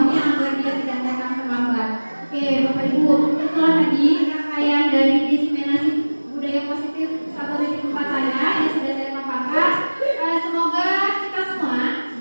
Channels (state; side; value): inverted; both; correlation -1.00